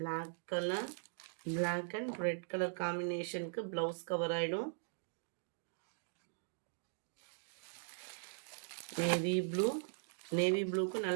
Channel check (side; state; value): left; silent; digital silence